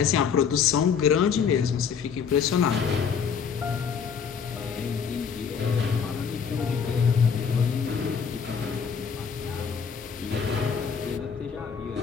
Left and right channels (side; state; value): right; quieter; 6.6 dB